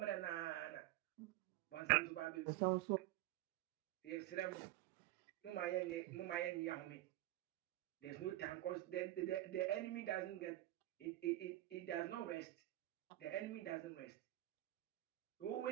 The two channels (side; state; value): left; quieter; 15.9 dB